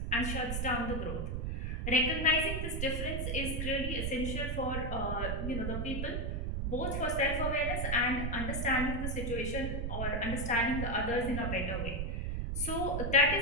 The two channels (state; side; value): noise; right; rumble, 2 dB below the sound